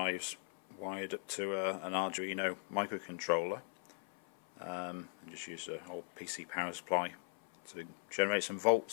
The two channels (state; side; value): silent; right; 52 dB below the other